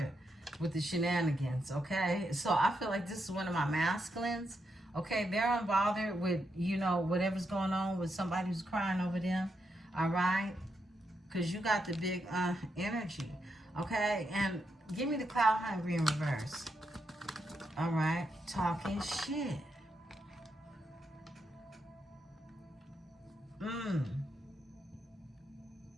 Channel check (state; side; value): normal; both; correlation 0.82